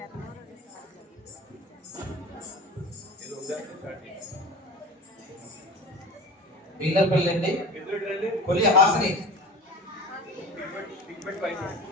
పిల్లపల్లి అండి, కొలి హాస్ని,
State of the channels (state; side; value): normal; both; correlation 0.34